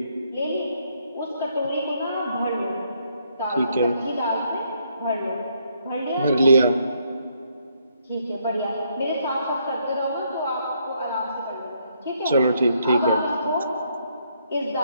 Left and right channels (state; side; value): inverted; both; correlation -0.73